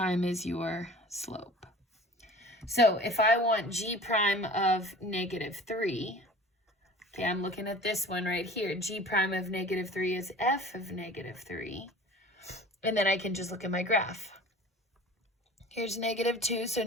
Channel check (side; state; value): both; normal; correlation 0.43